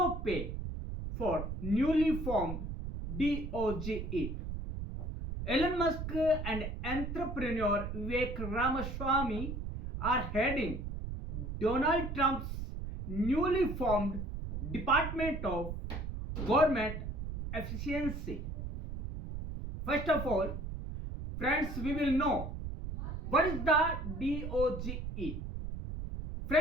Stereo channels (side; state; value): right; noise; rumble, 6 dB below the sound